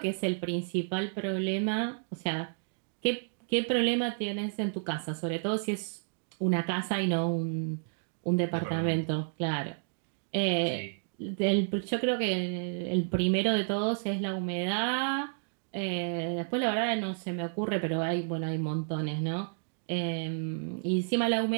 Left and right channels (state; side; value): silent; left; digital silence